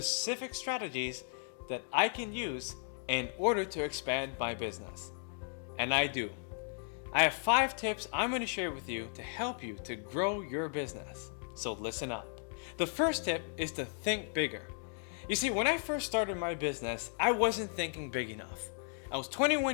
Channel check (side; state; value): right; silent; 54 dB below the other